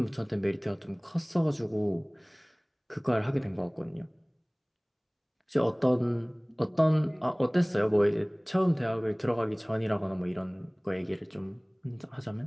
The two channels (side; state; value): both; identical; correlation 1.00